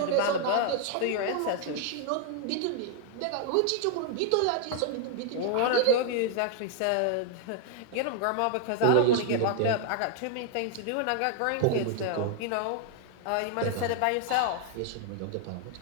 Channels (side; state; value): both; different; correlation 0.00